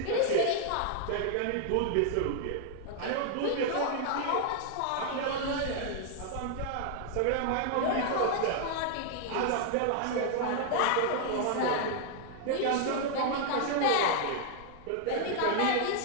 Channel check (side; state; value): both; different; correlation 0.00